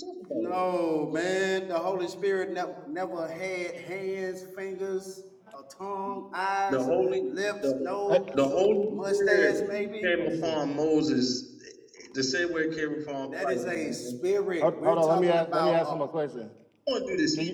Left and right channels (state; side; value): identical; both; correlation 1.00